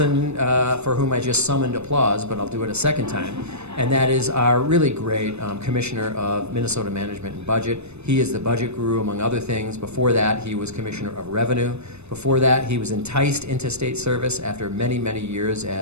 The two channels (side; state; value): left; late; 0.81 ms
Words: for whom I just summoned applause, but I'll do it a second time, and that is our really great Commissioner of Minnesota Management and Budget. He is the budget guru, among other things. Before that, he was Commissioner of Revenue. Before that, he was enticed into state service after many, many years